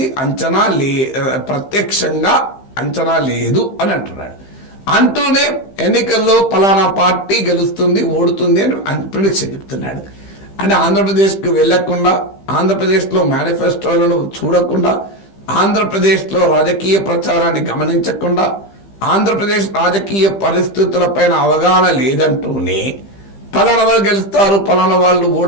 ప్రత్యక్షంగా అంచనా లేదు అని అంటున్నాడు. అంటూనే ఎన్నికల్లో పలానా పార్టీ గెలుస్తుంది, ఓడుతుంది అని ప్రిడిక్షన్ చెప్తున్నాడు. అంటే ఆంధ్రప్రదేశ్కి వెళ్లకుండా, ఆంధ్రప్రదేశ్లో మేనిఫెస్టోలను చూడకుండా, ఆంధ్రప్రదేశ్లో రాజకీయ ప్రచారాన్ని గమనించకుండా, ఆంధ్రప్రదేశ్ రాజకీయ పరిస్థితులపైన అవగాహన లేదంటూనే పలానా వాళ్ళు గెలుస్తారు, పలానా వాళ్ళు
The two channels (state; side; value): late; right; 15 ms